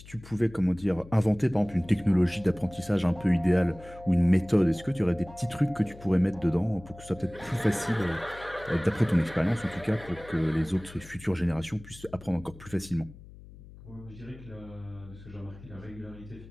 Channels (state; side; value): noise; left; hum, 19 dB below the sound